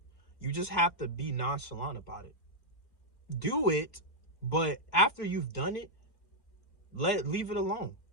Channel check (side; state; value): right; late; 2.1 ms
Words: You just have to be nonchalant about it. Do it, but after you've done it, leave it alone.